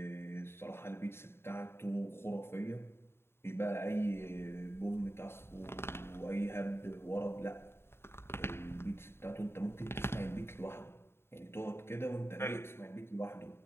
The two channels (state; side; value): late; right; 0.12 ms